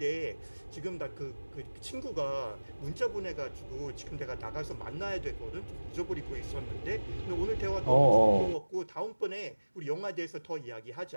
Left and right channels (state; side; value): inverted; both; correlation -1.00